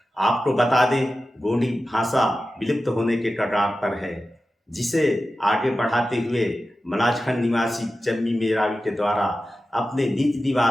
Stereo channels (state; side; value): normal; both; correlation 0.93